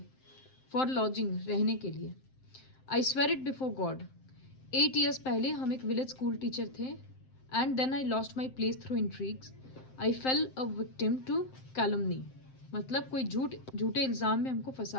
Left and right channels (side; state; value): right; late; 7.7 ms